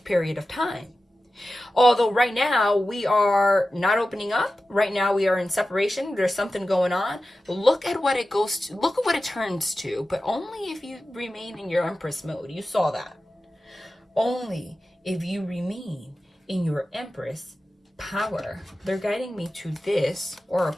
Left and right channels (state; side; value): normal; both; correlation 0.94